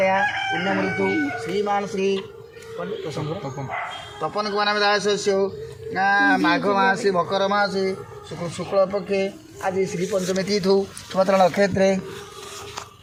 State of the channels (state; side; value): identical; both; correlation 1.00